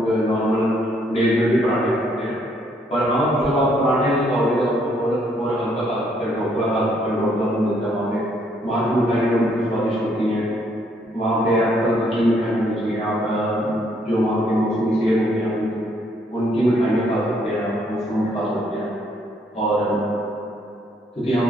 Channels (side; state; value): both; normal; correlation 0.69